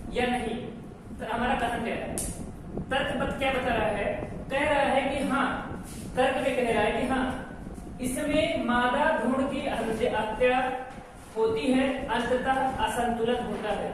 या नहीं? तो हमारा कथन क्या है? तर्क क्या बता रहा है? कह रहा है कि हाँ, तर्क में कह रहा है कि हाँ इसमें मादा भ्रूण की हत्या होती है, अंततः असंतुलन होता है।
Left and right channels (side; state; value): both; identical; correlation 1.00